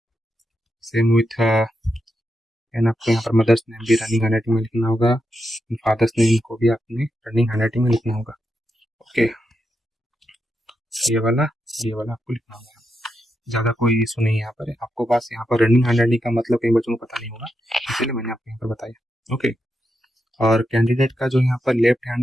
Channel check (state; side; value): normal; both; correlation 0.85